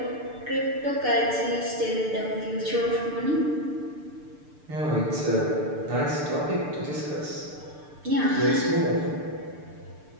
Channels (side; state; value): left; late; 6.7 ms